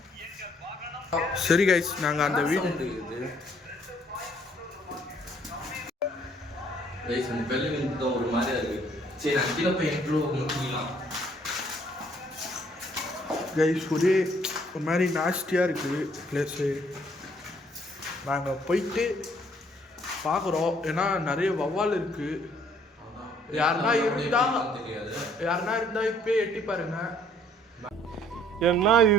சரி கைஸ் நாங்கள் அந்த வீடு ஒரு மாதிரியா இருக்கு. சரி நான் கீழே போய் முடிக்கலாம். கைஸ் ஒரே ஒரு மாதிரி நாஸ்டியாக இருக்குது பிளேஸு. நாங்கள் போயிட்டு பார்க்குறோம். ஏன்னா நிறைய வவ்வால் இருக்குது. யாருன்னா இருந்தா இப்போ எட்டி பாருங்க. என்ன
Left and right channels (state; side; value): normal; both; correlation 0.63